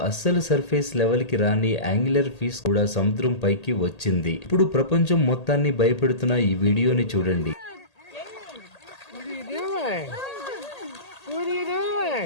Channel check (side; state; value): right; late; 1.8 ms